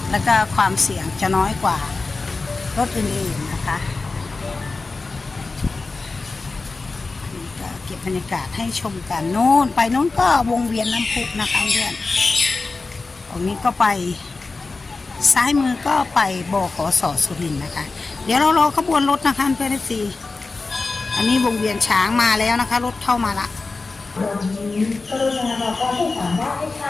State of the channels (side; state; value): right; quieter; 3.8 dB